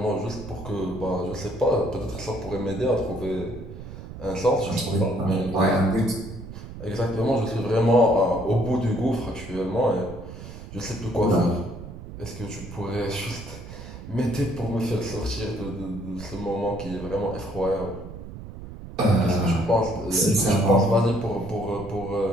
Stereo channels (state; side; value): noise; right; rumble, 12 dB below the sound